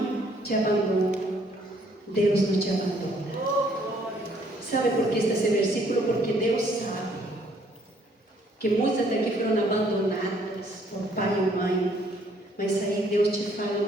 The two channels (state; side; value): normal; both; correlation 0.64